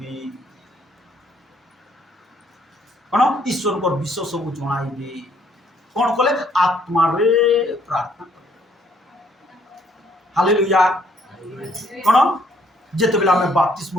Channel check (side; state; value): both; normal; correlation 0.66